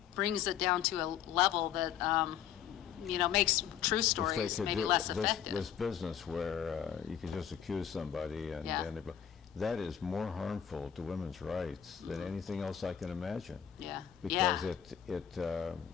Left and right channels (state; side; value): quieter; right; 9.1 dB